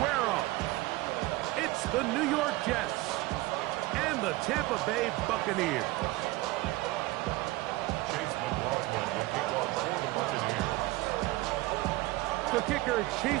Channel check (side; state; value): left; quieter; 20.0 dB